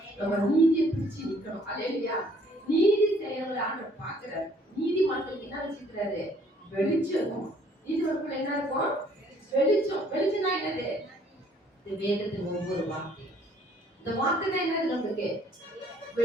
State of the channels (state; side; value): normal; both; correlation 0.61